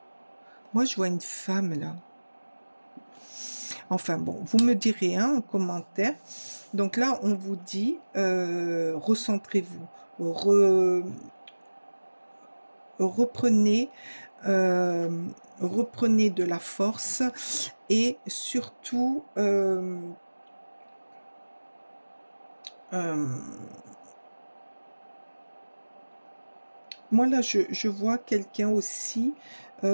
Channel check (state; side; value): inverted; both; correlation -1.00